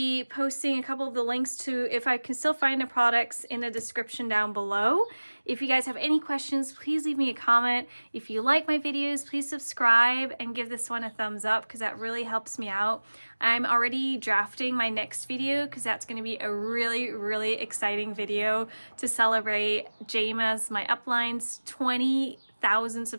posting a couple of the links to, if I can still find the products, in the description down below. If you guys have any questions, please leave me a comment. If you like my videos, please subscribe and give this one a thumbs up, because that really helps me out. I'm already drafting my next video, because that's going to be a really, really exciting video to celebrate Jama's, my upline's 20,000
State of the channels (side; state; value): both; inverted; correlation -1.00